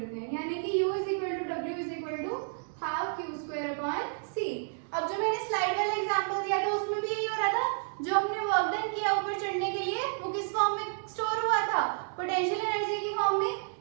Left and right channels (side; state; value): left; silent; 57 dB below the other